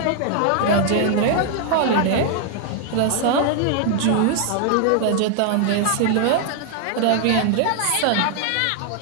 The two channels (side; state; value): both; different; correlation 0.00